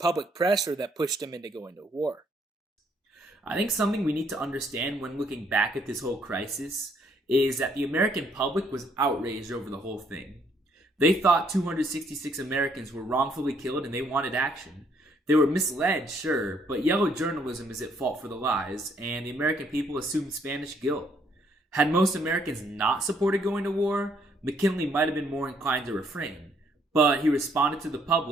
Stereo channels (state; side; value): normal; both; correlation 0.68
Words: pressure that pushed him into going to war. I think something we need to understand when looking back at this whole crisis is that the American public was outraged over the whole thing. They thought 266 Americans were wrongfully killed and they wanted action. They were misled, sure, but yellow journalism is at fault for the lies, and the American people assumed Spanish guilt. Had most Americans not supported going to war, McKinley might have been more inclined to refrain. But he responded to the